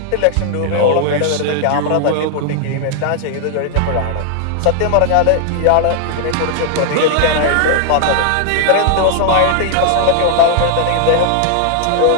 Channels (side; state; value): both; different; correlation 0.00